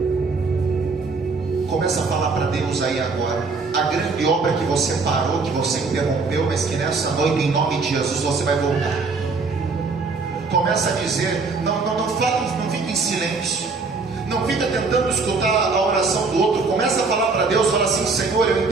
Começa a falar para Deus aí agora. A grande obra que você parou, que você interrompeu, mas que nessa noite, em nome de Jesus, você vai voltar. Começa a dizer, não fala, não fique em silêncio. Não fica tentando escutar a oração do outro. Começa a falar para Deus, fala assim: Senhor, eu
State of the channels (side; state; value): left; quieter; 4.2 dB